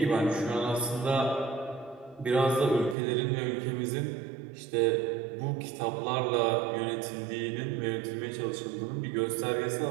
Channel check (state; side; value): drops out; left; at 3.0 s